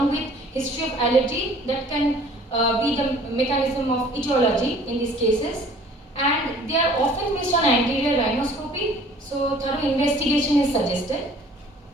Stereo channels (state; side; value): normal; both; correlation 0.52